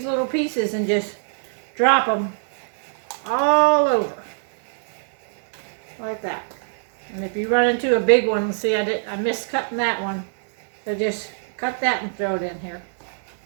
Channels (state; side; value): silent; left; digital silence